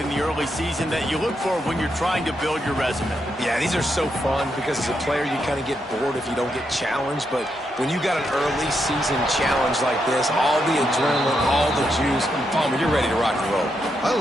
the early season, that you look for when you're trying to build your resume. Yeah, these are so fun because as a player, you kind of get bored if you don't get challenged. But when you got an early season challenge like this, all the adrenaline, all the juice, Palmer, you're ready to rock and roll. I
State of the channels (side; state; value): both; normal; correlation 0.81